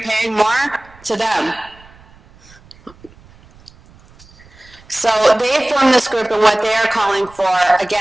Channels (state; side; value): noise; right; rumble, 26 dB below the sound